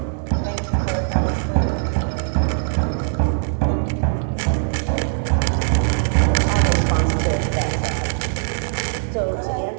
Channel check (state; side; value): silent; left; 65 dB below the other